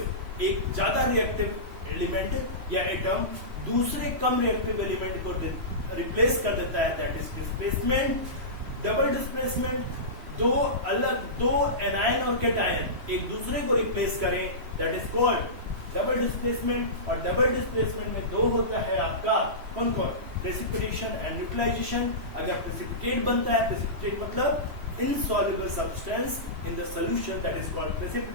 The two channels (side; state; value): left; late; 3.1 ms